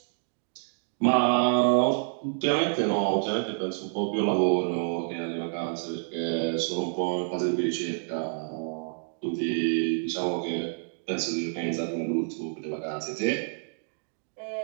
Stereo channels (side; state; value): left; silent; digital silence